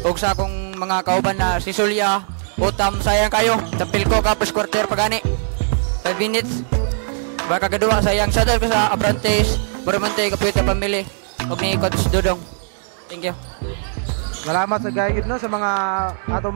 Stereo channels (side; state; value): left; silent; digital silence